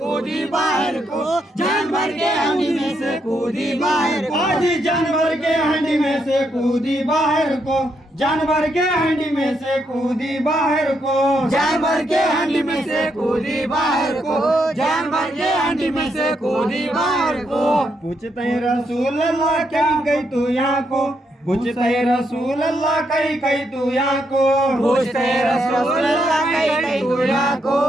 बाहर को, जानवर के हंडी में से कूदी बाहर को। आज जानवर के हंडी में से कूदी बाहर को, जानवर के हंडी में से कूदी बाहर को, जानवर के हंडी में से कूदी बाहर को, जानवर के हंडी में से कूदी बाहर को। पूछते हैं रसूल अल्लाह क्या गई तू यहाँ को, पूछते हैं रसूल अल्लाह कहीं तू यहाँ को, पूछते रसूल अल्लाह कहीं तू यहाँ को,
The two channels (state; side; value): normal; both; correlation 0.78